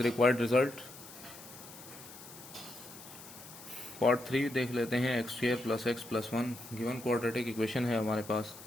required result. Part 3 देख लेते हैं. X square plus x plus 1 given quadratic equation है हमारे पास.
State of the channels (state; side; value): noise; left; hiss, 16 dB below the sound